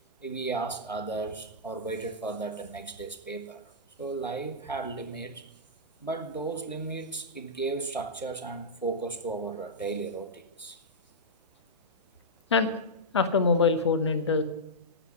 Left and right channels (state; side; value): normal; both; correlation -0.12